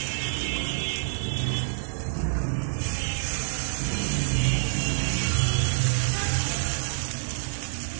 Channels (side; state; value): left; silent; 57 dB below the other